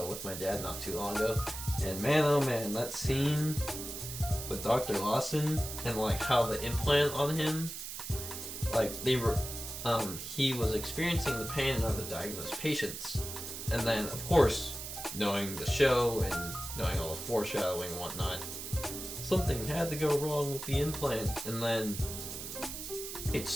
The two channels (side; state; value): right; noise; hiss, 8 dB below the sound